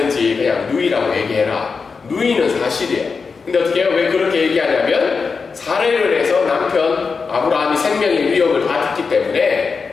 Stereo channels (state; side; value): quieter; right; 5.0 dB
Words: 그냥 누이라고 얘기해라. 누이는 사실이에요. 근데 어떻게 해요? 왜 그렇게 얘기하냐면 살해를 해서 남편 아브라함이 생명의 위협을 받았기